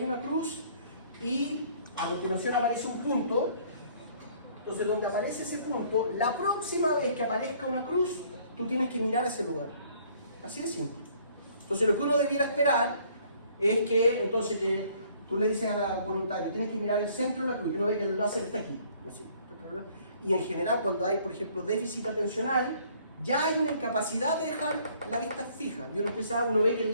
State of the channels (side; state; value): both; inverted; correlation -0.60